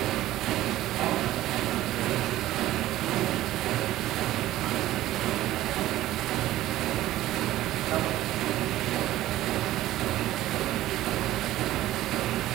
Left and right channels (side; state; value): left; quieter; 14.9 dB